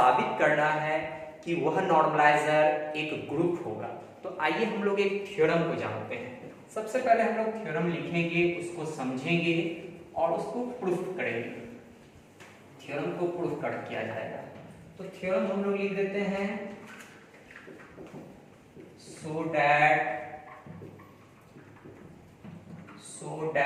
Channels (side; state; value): both; identical; correlation 1.00